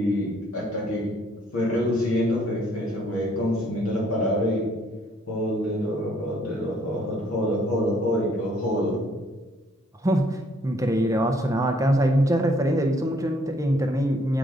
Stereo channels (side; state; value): both; normal; correlation 0.65